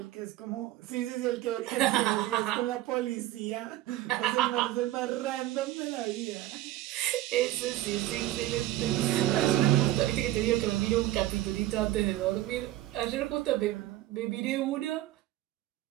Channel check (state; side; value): quieter; left; 15.1 dB